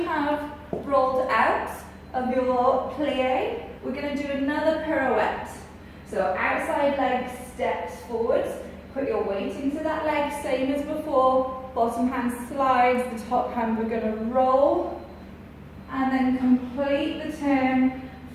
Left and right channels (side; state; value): both; identical; correlation 1.00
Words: have rolled out of your plie, we're going to do another pirouette. So outside leg steps forwards, put your weight into that leg, same as before. Bottom hand slides, the top hand we're going to roll, and then complete the turn,